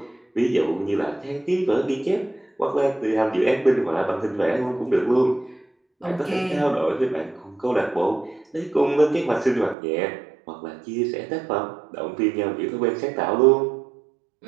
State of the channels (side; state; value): left; drops out; at 9.8 s